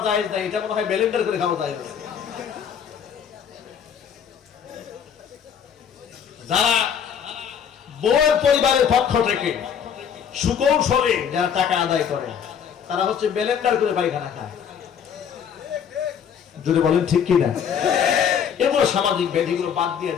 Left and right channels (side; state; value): right; quieter; 7.8 dB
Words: যায় না, এটা মনে হয় ব্লেন্ডার করে খাওয়া যায়। যারা বউয়ের পরিবারের পক্ষ থেকে সুকৌশলে যারা টাকা আদায় করে, তারা হচ্ছে ব্লেন্ডার করে পায়খানা খায়। যদি বলেন ঠিক কিনা? এগুলো সামাজিক ব্যাধিগুলো বাদ দিয়ে